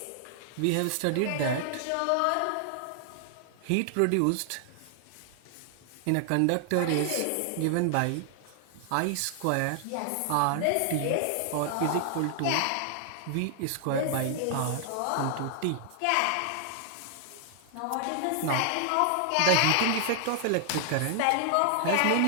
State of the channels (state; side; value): different; both; correlation 0.00